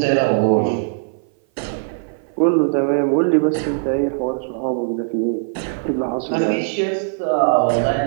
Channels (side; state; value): left; silent; 58 dB below the other